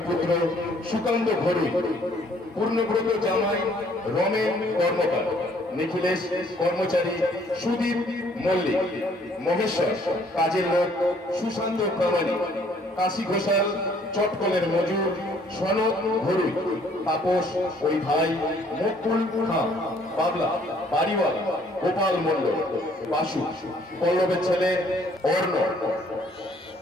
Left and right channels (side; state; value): both; normal; correlation 0.62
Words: পুত্র সুকান্ত ঘরুই, পূর্ণব্রত জামাই রমেন কর্মকার, নিখিলেশ কর্মচারী সুদীপ মল্লিক, মহেশ্বর কাজের লোক সুশান্ত প্রামাণিক, কাশী ঘোষাল চটকলের মজুর সনদ ঘরুই, তাপস ওই ভাই মুকুল খান, বাবলা বাড়িওয়ালা গোপাল মন্ডল, বাসু পল্লবের ছেলে অর্ণ,